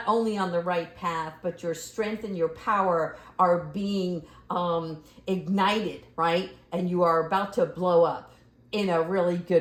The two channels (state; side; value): identical; both; correlation 1.00